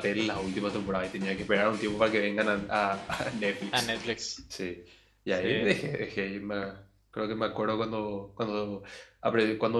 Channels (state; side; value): identical; both; correlation 1.00